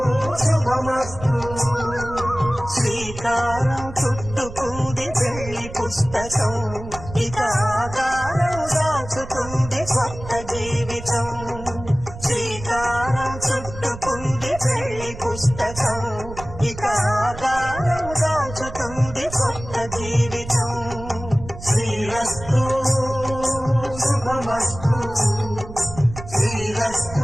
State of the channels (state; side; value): noise; right; rumble, 12 dB below the sound